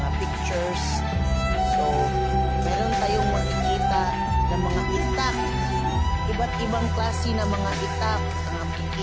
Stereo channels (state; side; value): identical; both; correlation 1.00